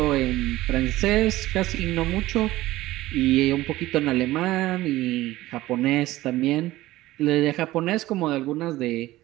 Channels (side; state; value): left; quieter; 16.9 dB